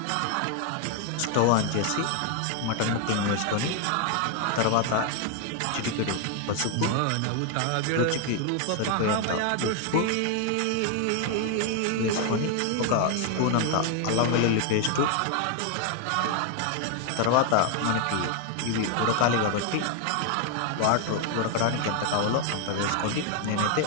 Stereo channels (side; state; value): both; different; correlation 0.00